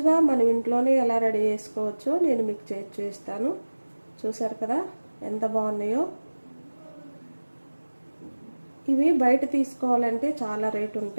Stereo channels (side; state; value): both; inverted; correlation -1.00